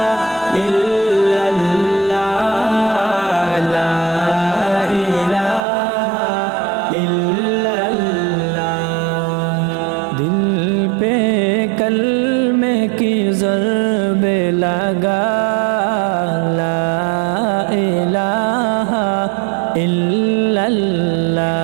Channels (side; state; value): left; drops out; at 5.6 s